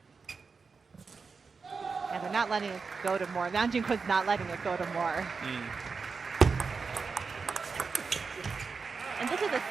And they're not letting it go to more. Liang Jinkkun's not letting it go to more. And this is a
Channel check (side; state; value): left; quieter; 4.9 dB